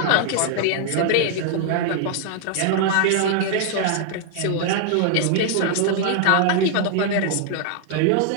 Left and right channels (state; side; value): different; both; correlation 0.00